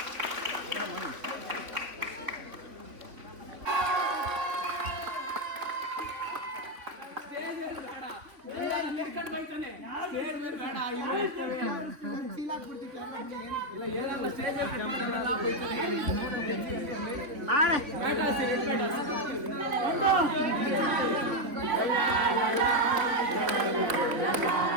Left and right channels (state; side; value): late; left; 3.5 ms